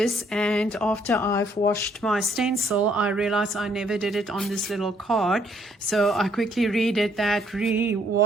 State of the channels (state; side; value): normal; both; correlation 0.68